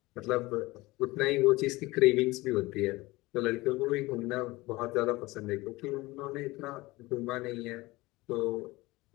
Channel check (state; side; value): quieter; right; 20.9 dB